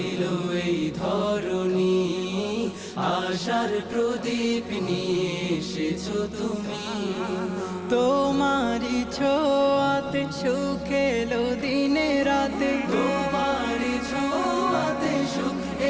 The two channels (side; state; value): both; identical; correlation 1.00